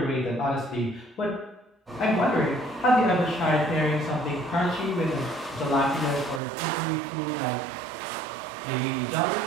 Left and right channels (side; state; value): left; drops out; at 6.4 s